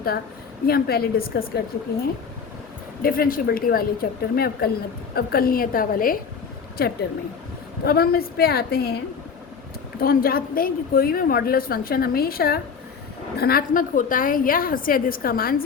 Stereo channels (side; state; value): right; quieter; 6.1 dB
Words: ये हम पहले डिस्कस कर चुके हैं डिफरेंशिएबिलिटी वाले चैप्टर में, अवकलनीयता वाले चैप्टर में। तो अब हम इस पे आते हैं। तो हम जानते हैं कि कोई भी मॉडुलस फंक्शन हमेशा धनात्मक होता है या हद से अधिक इसका मान